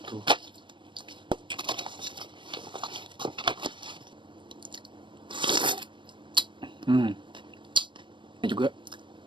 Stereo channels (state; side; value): late; left; 0.23 ms